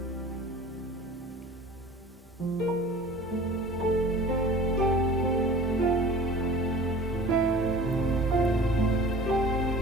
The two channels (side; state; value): both; normal; correlation 0.43